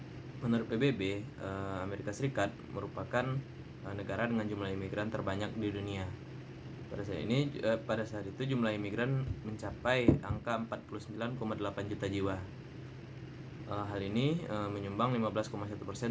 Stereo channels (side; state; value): both; identical; correlation 1.00